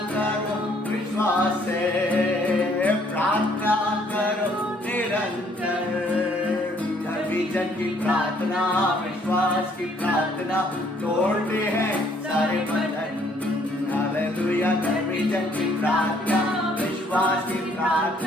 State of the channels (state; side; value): normal; both; correlation 0.64